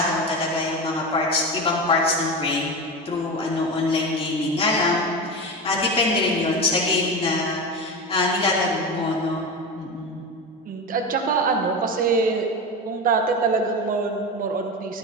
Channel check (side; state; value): both; normal; correlation 0.22